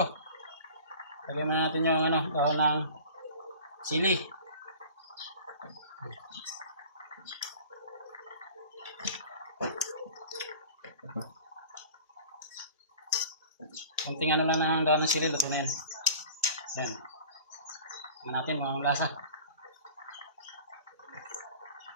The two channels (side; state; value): both; inverted; correlation -0.42